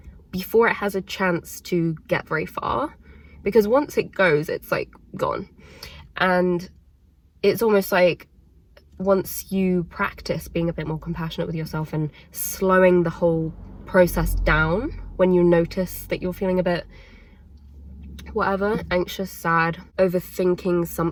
before it has a chance to get very far, because once it goes, it's like gone. And it's almost like once you practice being a bit more compassionate with yourself and slowing the whole process down when you notice that you're feeling a bit whatever, anxious, sad, overthinking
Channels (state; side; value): identical; both; correlation 1.00